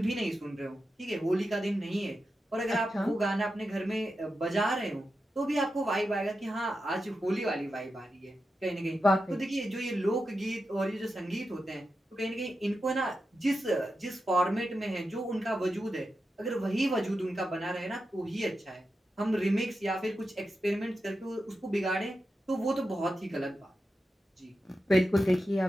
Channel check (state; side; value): normal; both; correlation 0.90